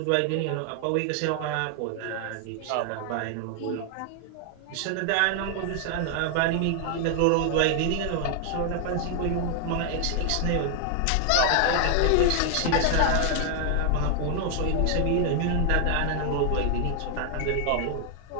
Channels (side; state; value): both; different; correlation 0.00